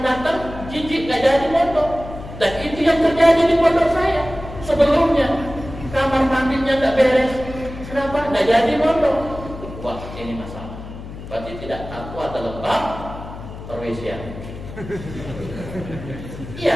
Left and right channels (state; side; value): noise; left; hum, 12 dB below the sound